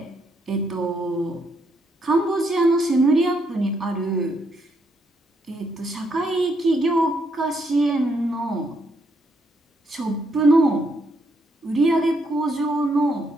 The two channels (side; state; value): both; normal; correlation 0.75